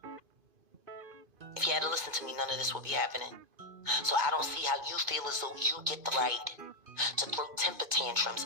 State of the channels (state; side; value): late; left; 2.5 ms